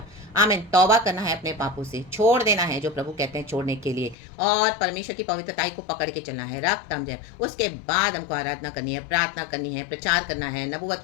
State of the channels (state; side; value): drops out; right; at 4.2 s